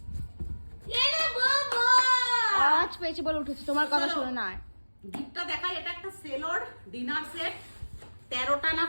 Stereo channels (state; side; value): inverted; both; correlation -1.00